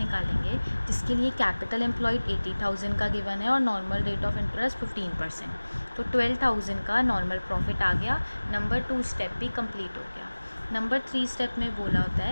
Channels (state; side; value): inverted; both; correlation -1.00